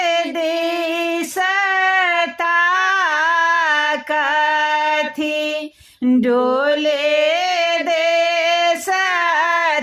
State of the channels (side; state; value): both; identical; correlation 1.00